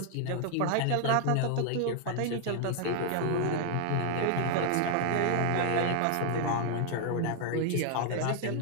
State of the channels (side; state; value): both; different; correlation 0.00